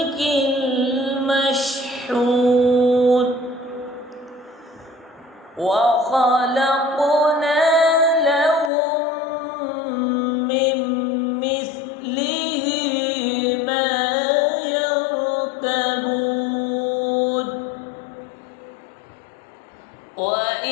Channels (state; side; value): drops out; right; at 8.7 s